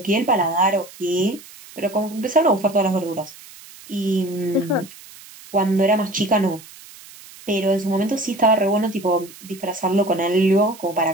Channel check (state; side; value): noise; right; hiss, 20 dB below the sound